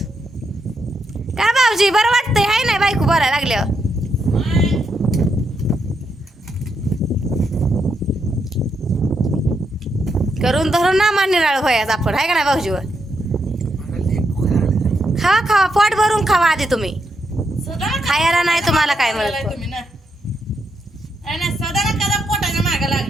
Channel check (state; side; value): normal; both; correlation 0.81